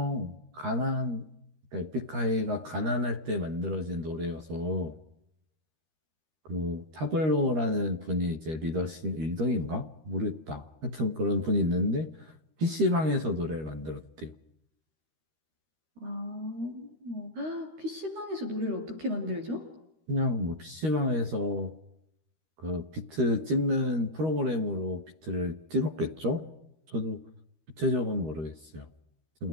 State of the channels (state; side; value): late; left; 13 ms